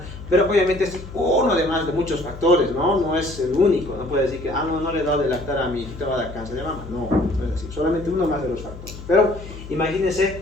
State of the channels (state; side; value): noise; left; hum, 13 dB below the sound